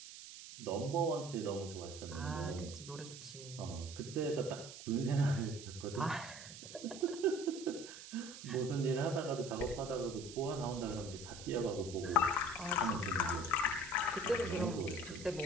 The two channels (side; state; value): right; noise; hiss, 13 dB below the sound